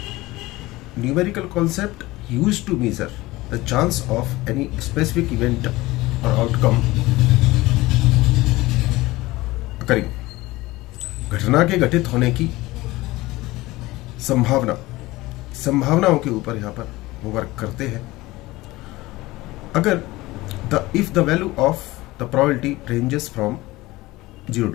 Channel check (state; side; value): quieter; right; 19.5 dB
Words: Numerical concept used to measure the chance of any specific event or outcome occurring। घटना के घटित होने की संभावनाओं के ऊपर यहाँ पर वो वर्क करते हैं। अगर if the value of the probability ranges from 0